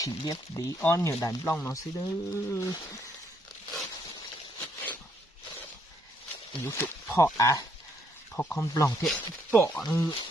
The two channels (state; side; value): normal; both; correlation 0.71